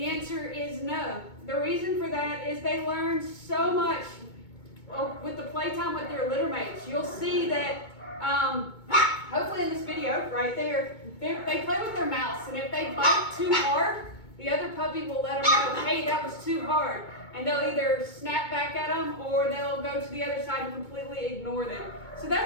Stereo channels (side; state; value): right; late; 2.2 ms